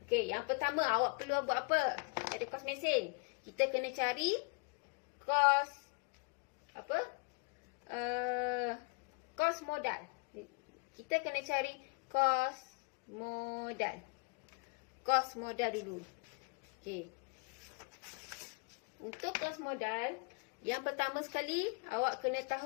Okey, yang pertama awak perlu buat apa pada kos mesin? Kita kena cari kos apa? Kos modal. Kita kena cari kos modal. Kos modal dulu. Okey. Untuk kos modal, yang pertama sekali awak kena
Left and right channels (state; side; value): quieter; right; 32.8 dB